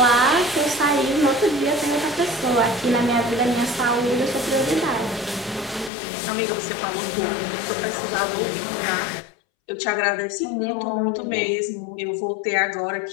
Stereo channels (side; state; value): right; drops out; at 5.9 s